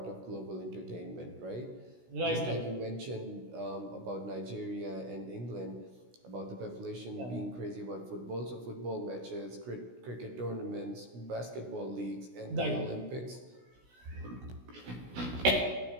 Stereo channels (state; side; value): late; left; 16 ms